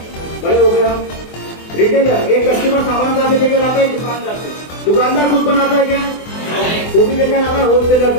बड़े हो गए हम। रिटेलर, एक कस्टमर सामान कहाँ से लेकर आता है? दुकानदार से। दुकानदार खुद बनाता है क्या? वो भी लेकर आता है होलसेलर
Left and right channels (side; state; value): right; late; 24 ms